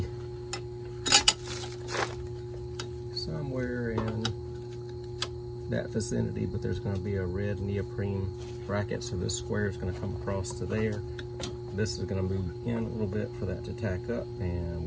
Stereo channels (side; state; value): both; identical; correlation 1.00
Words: somewhere in that vicinity, but there's going to be a red neoprene bracket, so this square is going to come across to there. This is going to move in a little bit for that to tack up, and